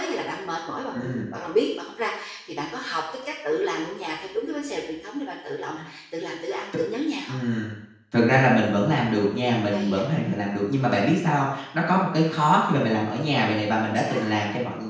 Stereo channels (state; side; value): identical; both; correlation 1.00